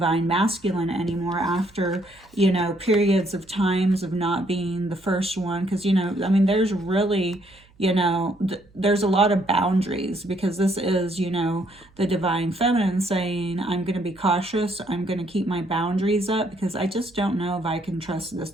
masculine anymore after, you know, periods of times of not being the first one. Because, you know, I mean, there's really, you know, there's a lot of boundaries, because this is, you know, the divine feminine saying, I'm going to be cautious. I'm going to keep my boundaries up, because I just don't know if I can trust this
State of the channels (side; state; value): right; noise; hum, 29 dB below the sound